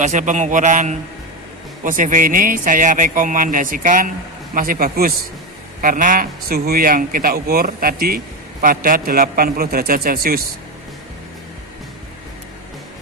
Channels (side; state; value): both; normal; correlation 0.13